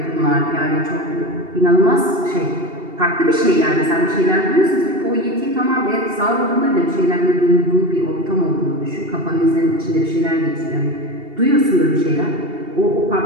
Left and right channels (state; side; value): late; left; 2.7 ms